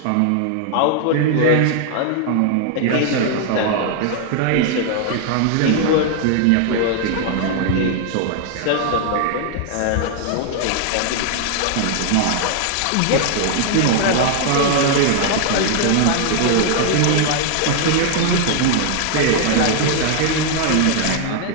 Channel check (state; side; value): different; both; correlation 0.00